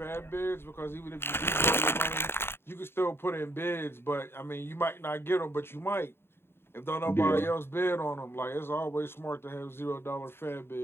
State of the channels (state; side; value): late; right; 0.11 ms